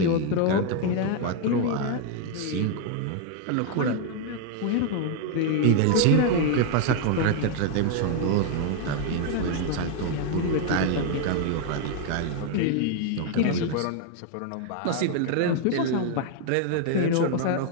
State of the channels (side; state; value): both; different; correlation 0.00